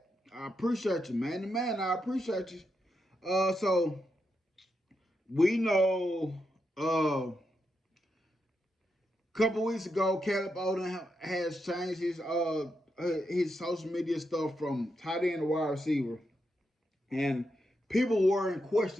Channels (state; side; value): normal; both; correlation 0.84